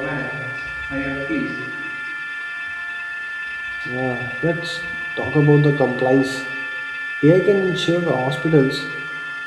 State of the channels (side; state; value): both; identical; correlation 1.00